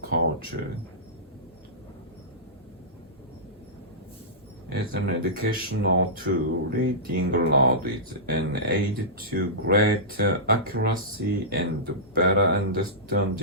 culture. As an educational tool, reading aloud is an aid to greater accuracy and better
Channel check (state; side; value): normal; both; correlation -0.18